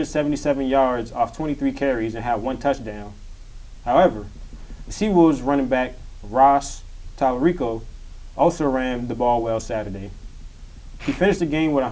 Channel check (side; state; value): both; identical; correlation 1.00